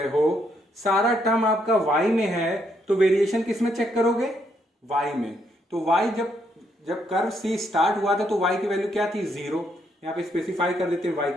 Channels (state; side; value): normal; both; correlation 0.74